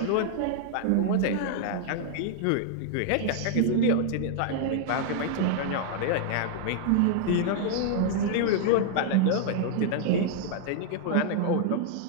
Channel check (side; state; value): both; different; correlation 0.00